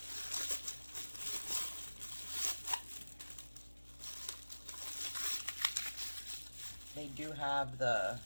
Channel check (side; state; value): both; inverted; correlation -1.00